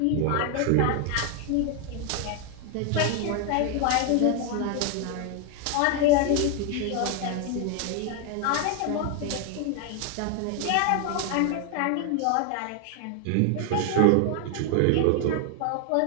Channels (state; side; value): different; both; correlation 0.01